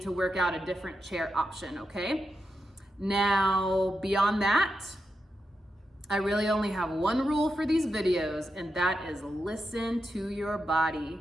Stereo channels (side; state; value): both; normal; correlation 0.87